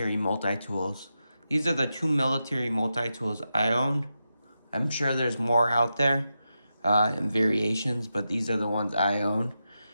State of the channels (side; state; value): both; inverted; correlation -0.89